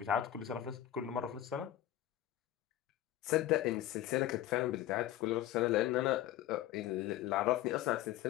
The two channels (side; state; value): right; quieter; 13.2 dB